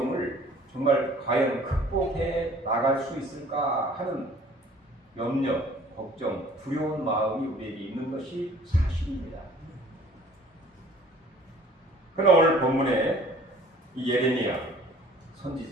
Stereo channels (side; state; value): both; normal; correlation 0.52